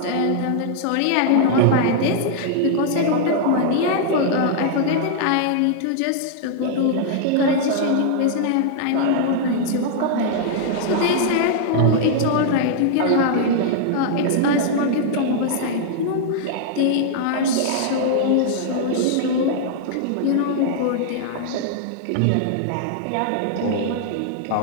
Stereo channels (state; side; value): different; both; correlation -0.01